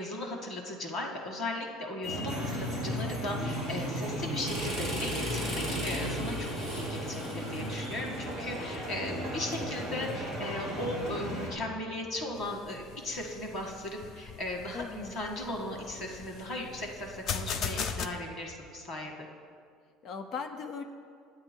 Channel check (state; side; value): normal; both; correlation 0.44